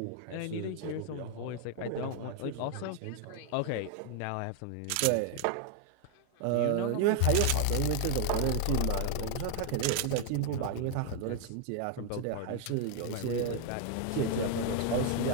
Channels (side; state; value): both; different; correlation 0.00